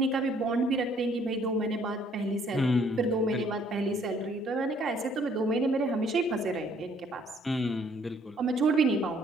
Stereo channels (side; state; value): both; normal; correlation 0.63